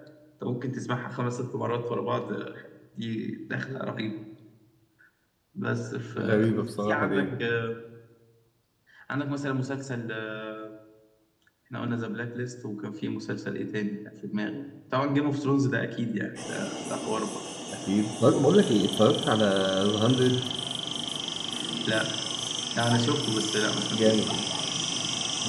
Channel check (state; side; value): identical; both; correlation 1.00